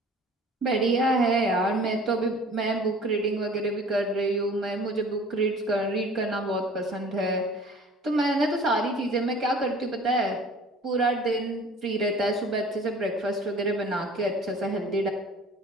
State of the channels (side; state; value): both; normal; correlation 0.47